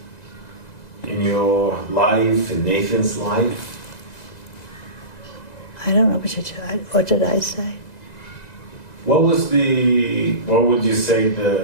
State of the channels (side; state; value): right; late; 1.9 ms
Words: in your life, in Nathan's life? I don't know what did I say? What would you say